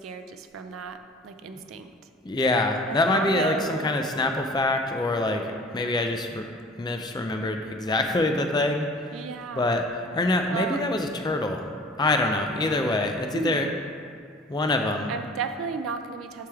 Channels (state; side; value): normal; both; correlation 0.45